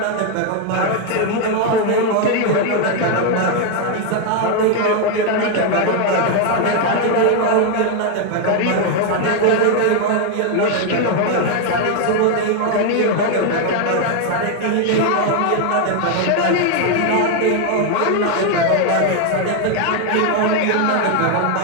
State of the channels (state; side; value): different; both; correlation 0.01